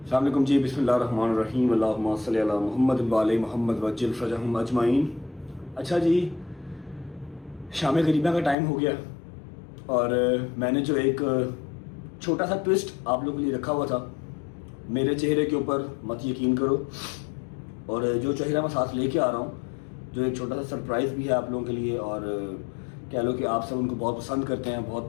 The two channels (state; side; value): drops out; right; at 8.6 s